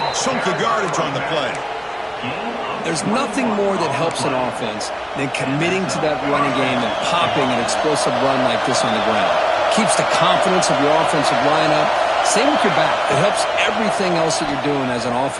chunk of yardage on the play. There's nothing more that helps an offense than committing to that running game and popping an explosive run like this on the ground. Keeps the confidence of your offensive lineup. Same with your back. It helps everything else that you're doing as an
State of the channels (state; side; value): identical; both; correlation 1.00